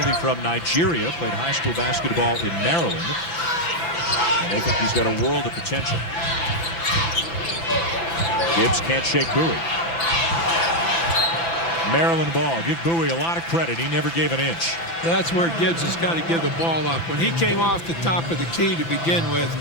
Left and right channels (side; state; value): right; late; 5.9 ms